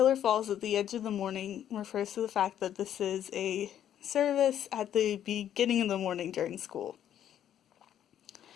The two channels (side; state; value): right; quieter; 10.4 dB